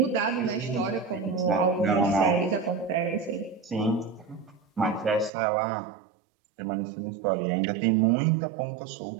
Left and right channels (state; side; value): drops out; left; at 5.3 s